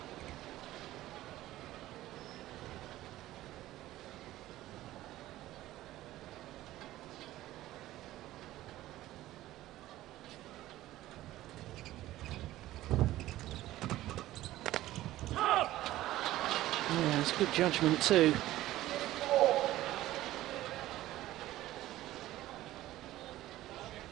Yeah, it's good judgment too.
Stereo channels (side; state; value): left; quieter; 15.3 dB